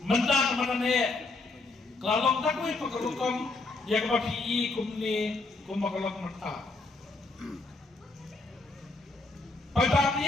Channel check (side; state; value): right; quieter; 3.4 dB